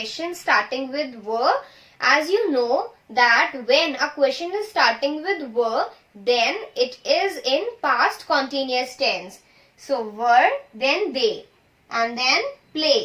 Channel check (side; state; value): both; identical; correlation 1.00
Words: starting with were. As you know that when a question is starting with were, then it is in past continuous tense. So were, then they, and then